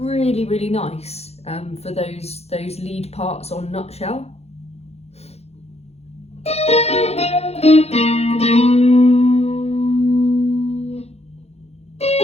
really nice for those lead parts on Nutshell.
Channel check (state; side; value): late; right; 0.30 ms